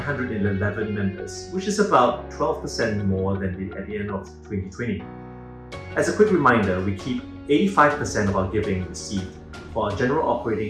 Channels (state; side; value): identical; both; correlation 1.00